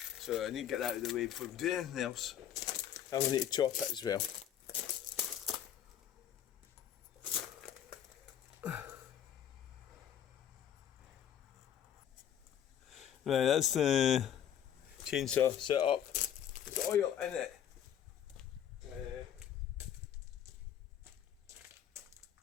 So I need to get that out of the way before we do anything else. I'm going to need to chop it as well. Right, that's the chainsaw set up. There's oil in it.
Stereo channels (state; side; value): quieter; right; 9.8 dB